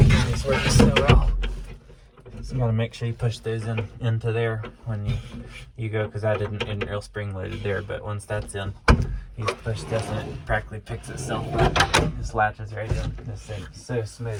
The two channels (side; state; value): both; identical; correlation 1.00